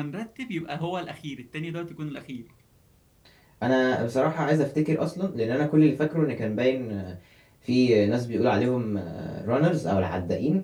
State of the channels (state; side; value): identical; both; correlation 1.00